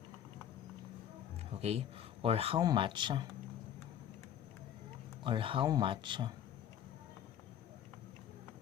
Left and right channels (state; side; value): quieter; right; 9.9 dB